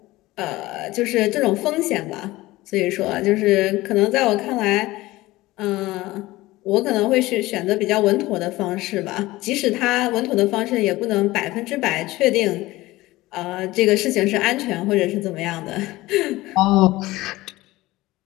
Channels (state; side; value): quieter; right; 18.6 dB